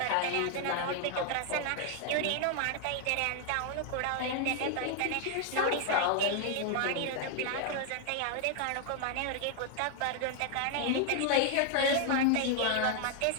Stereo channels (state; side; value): different; both; correlation 0.00